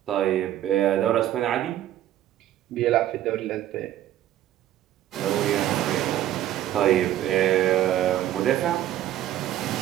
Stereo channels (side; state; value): left; quieter; 12.5 dB